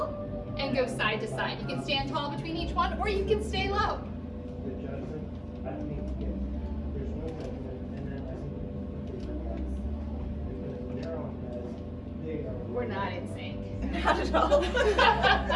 and go side to side. You can stand tall between each one, or you can stay low. We're not in sync. Not at all.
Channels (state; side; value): identical; both; correlation 1.00